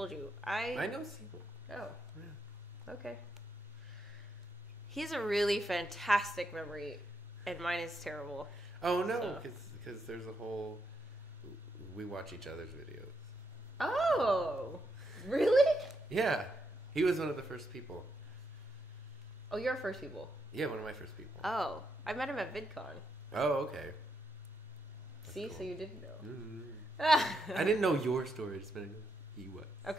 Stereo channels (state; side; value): normal; both; correlation 0.80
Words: you. I know Simo. Oh. Yeah. Okay. He has a really fantastic memory, and mine is terrible. Oh, no, because there's a whole We watch each other's videos. Oh, really? Yeah. He was one of the first people. Oh, you're first people. Yeah, one of my first people. Oh, I met him at VidCon. Oh, okay. That's See, cool. so you didn't know. I didn't know your story. I just meant he was.